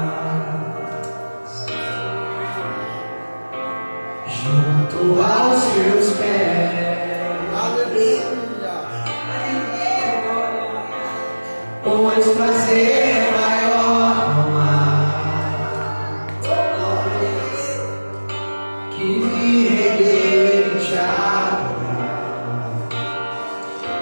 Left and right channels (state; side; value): inverted; both; correlation -1.00